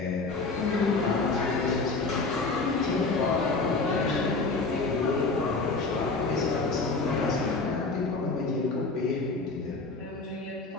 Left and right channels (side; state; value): right; quieter; 3.7 dB